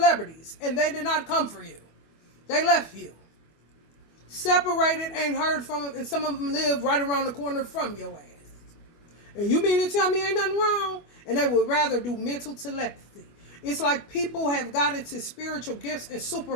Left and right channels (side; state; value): right; late; 25 ms